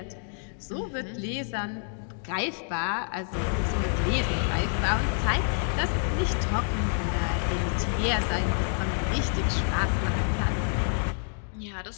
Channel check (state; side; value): silent; right; 59 dB below the other